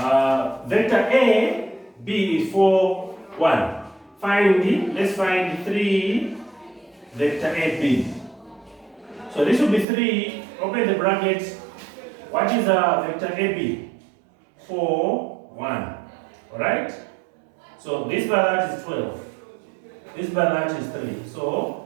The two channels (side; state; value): left; drops out; at 9.9 s